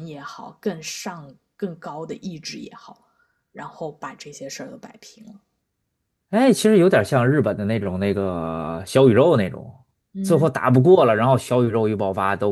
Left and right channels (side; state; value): both; identical; correlation 1.00